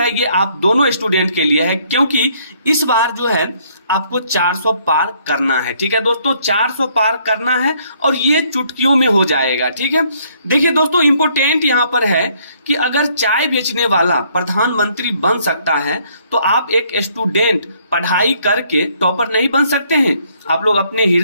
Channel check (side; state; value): both; inverted; correlation -0.66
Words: ये आप दोनों स्टूडेंट के लिए है, क्योंकि इस बार जो है आपको 400 पार करना है, ठीक है दोस्तों। 400 पार करना है और ये चुटकियों में हो जाएगा, ठीक है। देखिए दोस्तों, इंपोर्टेंट यहाँ पर है कि अगर चाय बेचने वाला प्रधानमंत्री बन सकता है तो आप एक स्टूडेंट पढ़ाई करके टॉपर नहीं बन सकते हैं? आप लोग अपने